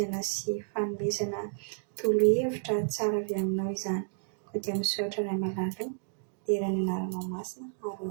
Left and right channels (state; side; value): silent; left; digital silence